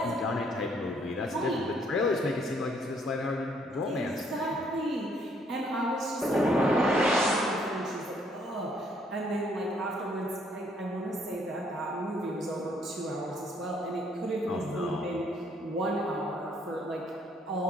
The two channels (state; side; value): normal; both; correlation 0.66